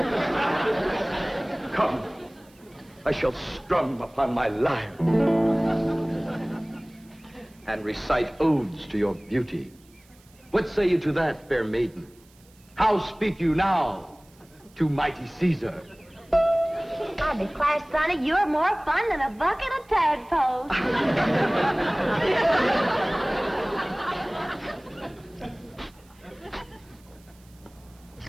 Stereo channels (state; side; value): noise; right; hiss, 29 dB below the sound